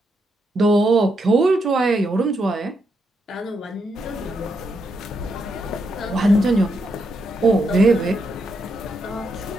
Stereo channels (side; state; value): both; normal; correlation 0.81